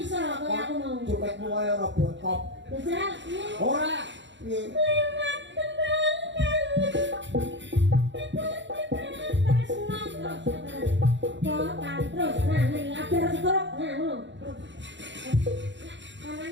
kaya aku mau? Jogetmu kaya ora botop. Jajal, piye? Ora. Piye? Lewat kembangkan terus, nah nih ajar sekrok, nah ngono.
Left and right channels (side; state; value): left; late; 0.53 ms